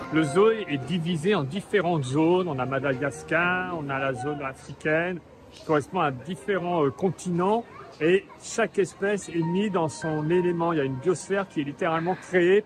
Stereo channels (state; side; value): identical; both; correlation 1.00